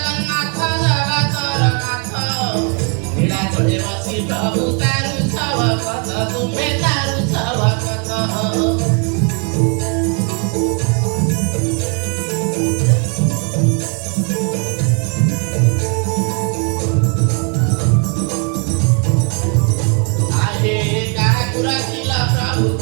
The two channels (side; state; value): left; quieter; 37.7 dB